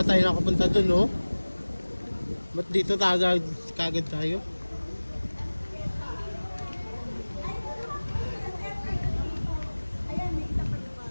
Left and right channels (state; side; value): inverted; both; correlation -1.00